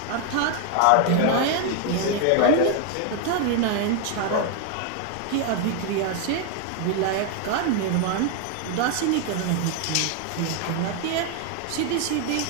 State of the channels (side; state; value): both; different; correlation 0.01